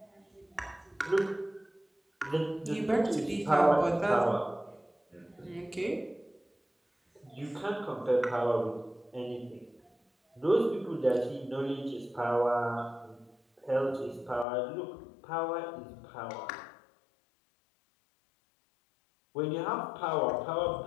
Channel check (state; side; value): drops out; right; at 14.5 s